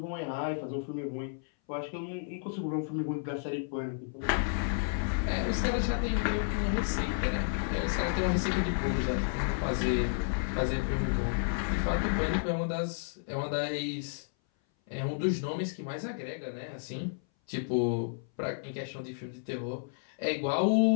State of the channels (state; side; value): silent; right; 57 dB below the other